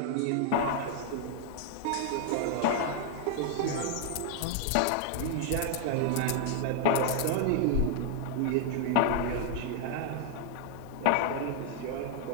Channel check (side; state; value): both; different; correlation 0.00